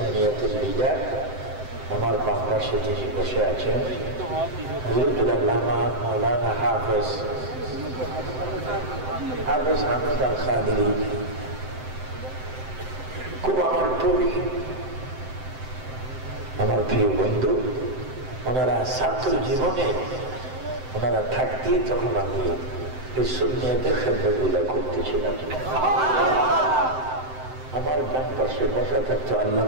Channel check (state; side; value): late; left; 7.8 ms